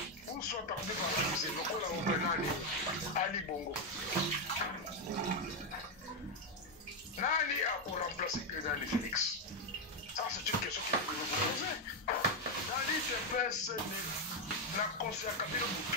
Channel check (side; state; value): both; normal; correlation 0.04